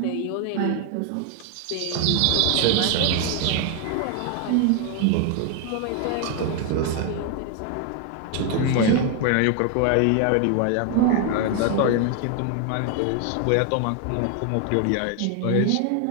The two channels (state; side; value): different; both; correlation 0.01